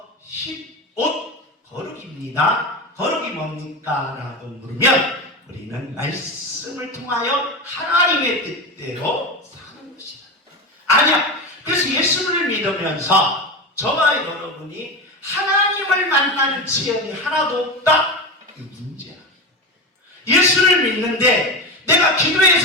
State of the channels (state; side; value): normal; both; correlation 0.20